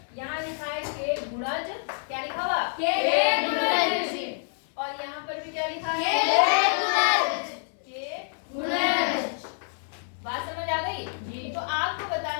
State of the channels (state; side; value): silent; right; digital silence